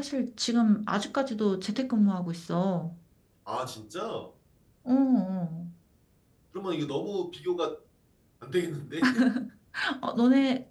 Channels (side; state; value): both; identical; correlation 1.00